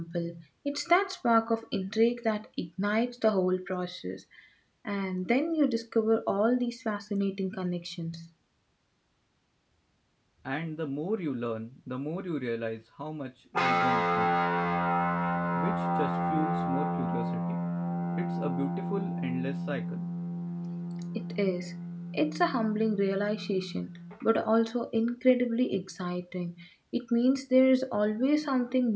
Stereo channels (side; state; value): both; identical; correlation 1.00